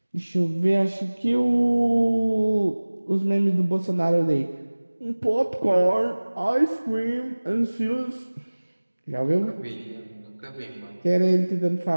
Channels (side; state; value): both; inverted; correlation -1.00